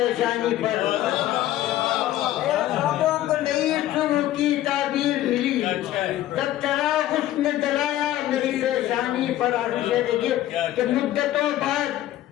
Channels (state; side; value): quieter; right; 13.7 dB